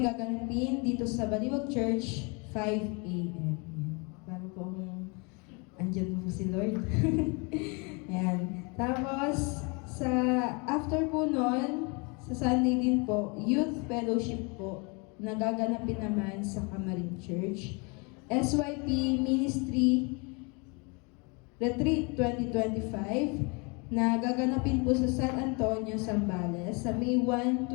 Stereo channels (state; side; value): quieter; right; 31.2 dB